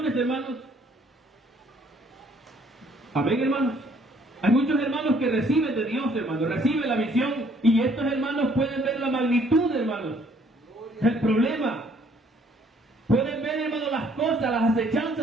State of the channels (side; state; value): both; normal; correlation 0.62